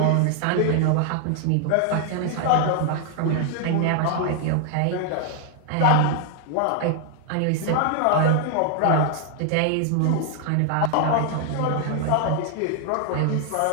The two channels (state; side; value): different; both; correlation 0.00